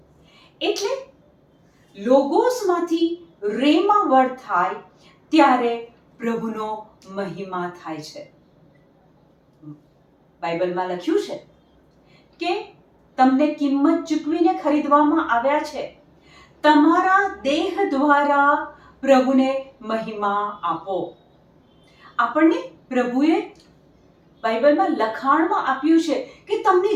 એટલે લોગોસમાંથી રેમા વર્ડ થાય ત્યારે પ્રભુનો મહિમા થાય છે. બાઇબલમાં લખ્યું છે કે તમને કિંમત ચૂકવીને ખરીદવામાં આવ્યા છે, તમારા દેહ દ્વારા પ્રભુને મહિમા આપો. આપણને પ્રભુએ બાઇબલમાં લખાણમાં આપ્યું છે કે તમને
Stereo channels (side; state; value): both; identical; correlation 1.00